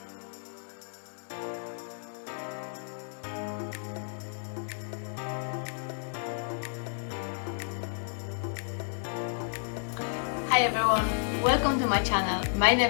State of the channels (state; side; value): silent; right; digital silence